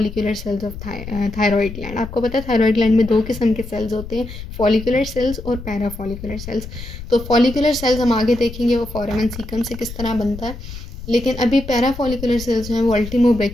cells of thyroid gland. आपको पता है थायरॉइड ग्लैंड में 2 किस्म के सेल्स होते हैं, फॉलिकुलर सेल्स और पैराफॉलिकुलर सेल्स। तो फॉलिकुलर सेल्स हम आगे देखेंगे वो फोरामेन सीकम से किस तरह बनता है, लेकिन अभी पैराफॉलिकुलर सेल्स जो हैं वो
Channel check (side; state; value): left; noise; rumble, 11 dB below the sound